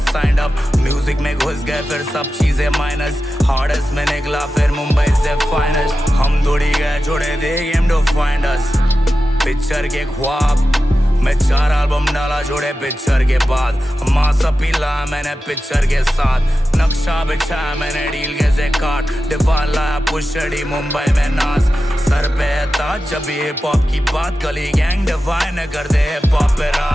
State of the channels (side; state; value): both; normal; correlation 0.93